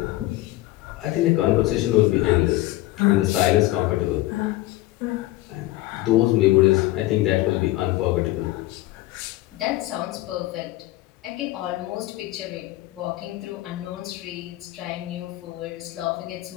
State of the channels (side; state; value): right; quieter; 17.5 dB